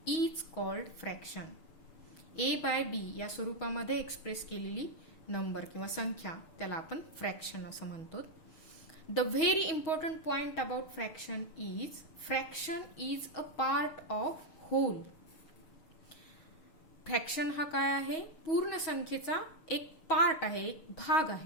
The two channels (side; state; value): right; late; 6.3 ms